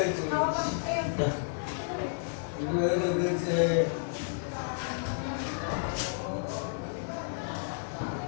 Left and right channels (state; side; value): silent; right; digital silence